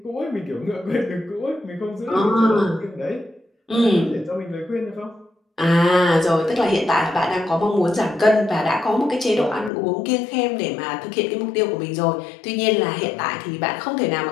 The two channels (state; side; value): drops out; right; at 9.7 s